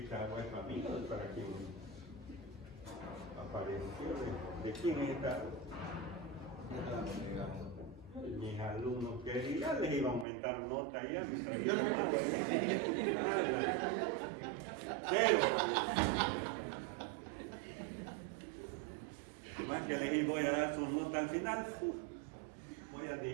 agua es para mí, no es para quien apareció. ¿De quién es esta agua? Mis alumnos querían, les iba a aumentar nota ya. Pero, más que les voy a dar sus notas al final, voy a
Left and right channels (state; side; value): drops out; left; at 10.2 s